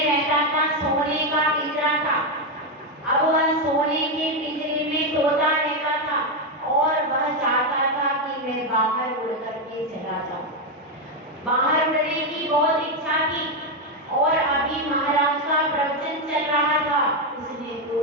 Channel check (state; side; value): normal; both; correlation 0.05